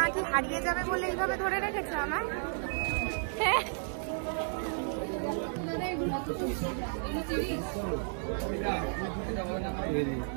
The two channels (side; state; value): left; silent; digital silence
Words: হারিয়ে যাবে বলে এইভাবে ধরে রেখেছে আমার।